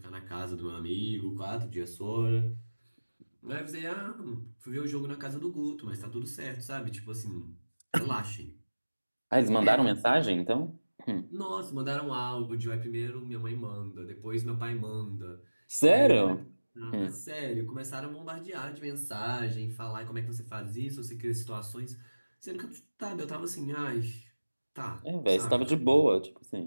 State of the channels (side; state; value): both; inverted; correlation -1.00